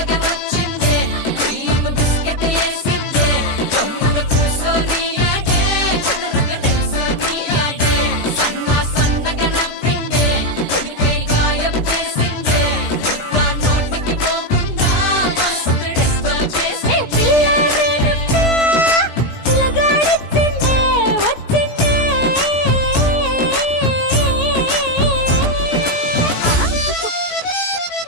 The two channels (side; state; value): right; late; 17 ms